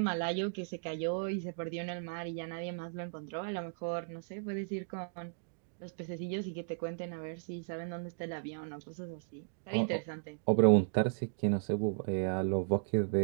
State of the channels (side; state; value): left; silent; digital silence